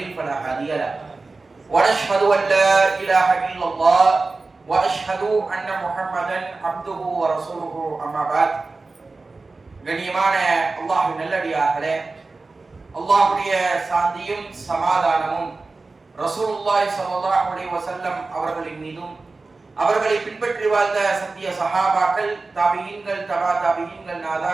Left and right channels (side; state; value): left; quieter; 3.7 dB